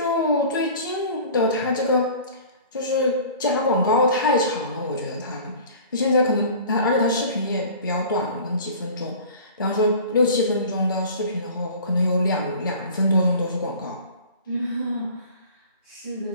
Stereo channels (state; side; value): inverted; both; correlation -0.43